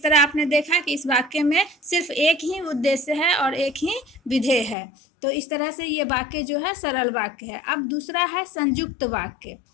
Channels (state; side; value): drops out; right; at 4.8 s